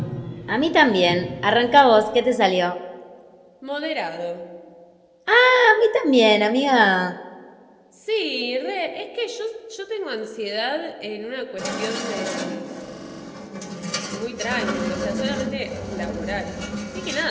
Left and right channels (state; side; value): identical; both; correlation 1.00